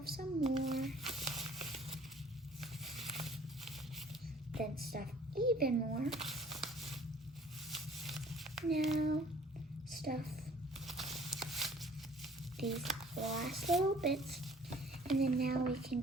some more, then stuff even more. Now stuff these last little bits, and then now we can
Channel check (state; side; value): normal; both; correlation 0.54